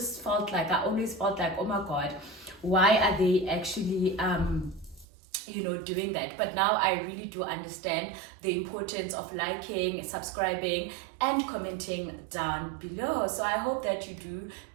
always felt like, oh my god, why are they actually doing that? But now I really do understand the importance of liking, subscribing and commenting down below. So I hope that you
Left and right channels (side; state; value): left; drops out; at 5.1 s